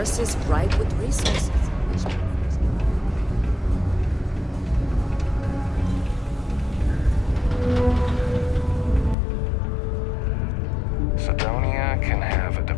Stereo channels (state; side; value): drops out; right; at 9.2 s